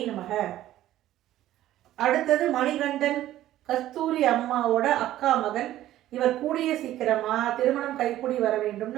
நமக. அடுத்தது மணிகண்டன். கஸ்தூரி அம்மாவோட அக்கா மகன். இவர் கூடிய சீக்கிரமா திருமணம் கைக்கூடி வர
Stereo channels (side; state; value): left; quieter; 13.7 dB